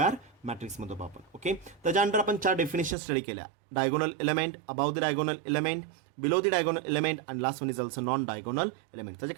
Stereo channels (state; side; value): drops out; left; at 3.0 s